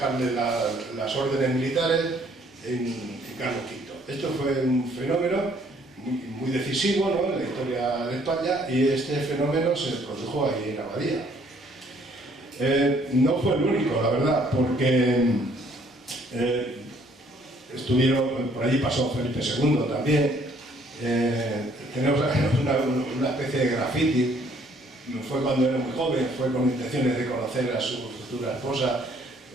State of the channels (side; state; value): both; normal; correlation 0.63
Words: las órdenes militares, en Carlos V. Esto fue un fenómeno muy decisivo, ¿no?, en la historia de España, y este fenómeno se produjo ahí en Abadía. No fue el único, la verdad, porque por allí pasó Felipe II también. Tenemos una especie de graffiti. Fue cuando era muy joven, fue con intenciones de conocer a su futura esposa.